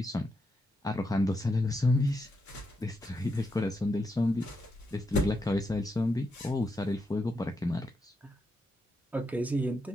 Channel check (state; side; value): normal; both; correlation 0.83